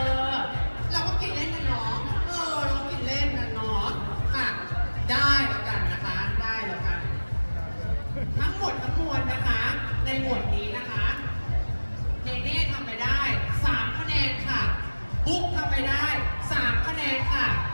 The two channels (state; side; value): inverted; both; correlation -1.00